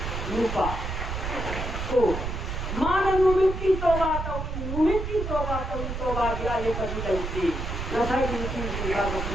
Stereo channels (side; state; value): right; noise; rumble, 4 dB below the sound